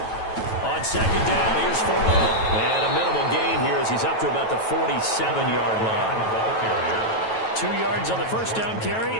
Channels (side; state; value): right; late; 9.1 ms